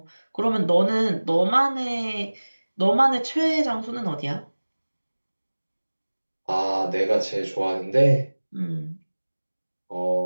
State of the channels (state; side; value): inverted; both; correlation -1.00